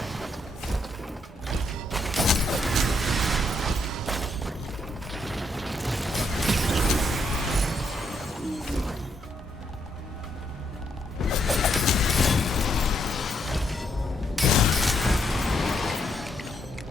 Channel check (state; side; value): normal; both; correlation 0.76